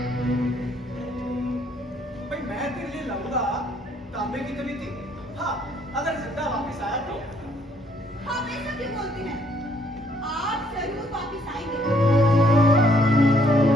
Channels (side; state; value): both; normal; correlation 0.66